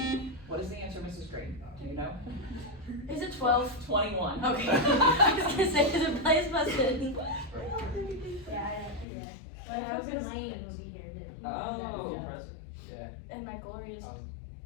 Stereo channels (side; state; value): right; drops out; at 9.1 s